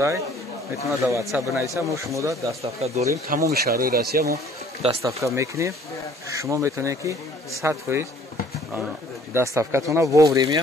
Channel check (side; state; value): both; normal; correlation 0.55